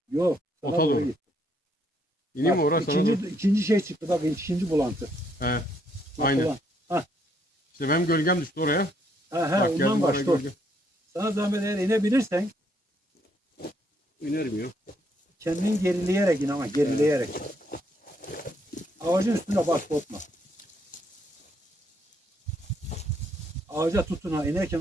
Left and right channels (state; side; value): normal; both; correlation 0.72